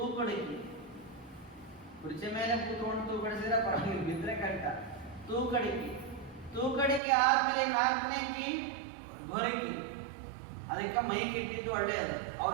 ಕುರ್ಚಿ ಮೇಲೆ ಕೂತ್ಕೊಂಡು ತೂಕಡಿಸಿದ್ರೆ ಪರವಾಗಿಲ್ಲ, ಬಿದ್ರೆ ಕರೆಕ್ಟ. ತೂಕಡಿಕೆ ಆದ್ಮೇಲೆ 4ನೇ ಕೀ ಗೊರಕಿ. ಅದಕ್ಕೆ ಮೈಕ್ ಇಟ್ಟಿದ್ದು ಒಳ್ಳೆಯದು,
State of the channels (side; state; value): left; drops out; at 7.0 s